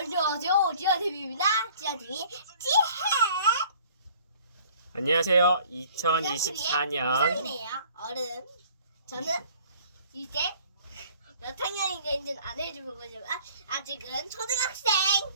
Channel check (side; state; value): both; inverted; correlation -0.53